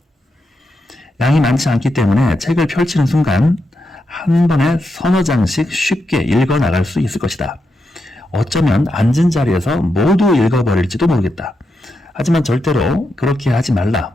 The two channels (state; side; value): normal; both; correlation 0.85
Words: 양이 많지 않기 때문에 책을 펼치는 순간 한 번에 서너 장씩 쉽게 읽어 나갈 수 있을 것이다. 어쩌면 앉은 자리에서 모두 읽어버릴지도 모르겠다. 하지만 절대로 그렇게 하지